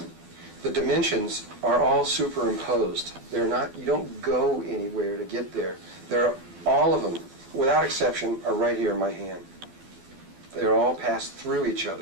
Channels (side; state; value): left; late; 12 ms